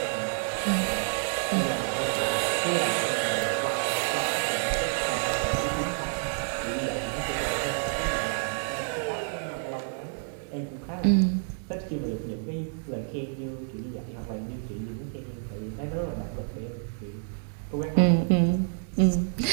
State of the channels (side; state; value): left; silent; digital silence